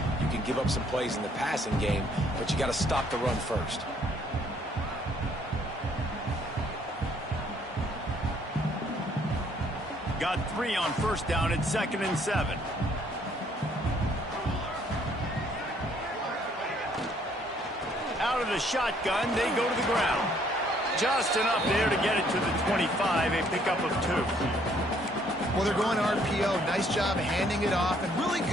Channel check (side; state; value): both; normal; correlation 0.65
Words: can give up some plays in the passing game, but you got to stop the run first. Got 3 on first down at 2nd and 7. Out of the shotgun, they go to the ground. Just enough there to get it to the 25, a pickup of 2. Well, they're going RPO. Nice job handing it off, and really